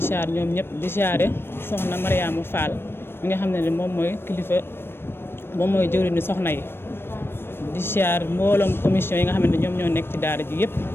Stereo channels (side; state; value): right; late; 0.11 ms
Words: ziar ñoom ñëpp di ziare soxna Mariama Fall mi nga xam ne moom mooy kilifa moom mooy jëwriñu soxna yi di ziar mbooloom commission yi nga xam ne ñoom ñoo nekk ci daara ji yëpp